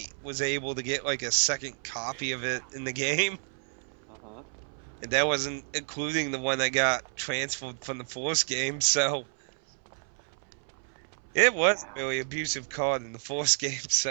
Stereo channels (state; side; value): silent; left; 58 dB below the other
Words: was able to get like a second copy of it in the game, uh-huh. and that wasn't including the one I got transferred from the Force game. So it was a Yeah. really abusive card in the Force game.